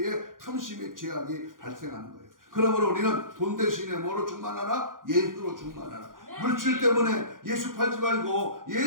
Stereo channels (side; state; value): left; late; 0.90 ms